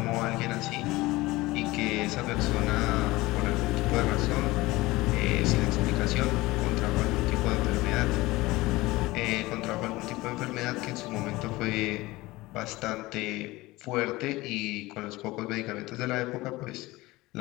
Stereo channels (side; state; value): right; quieter; 20.0 dB